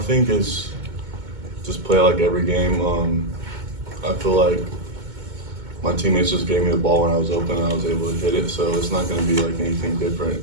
think it's just play like every game. I feel like my teammates just gave me the ball when I was open and I was able to hit it, so it's not going to be like anything different.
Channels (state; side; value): late; left; 2.2 ms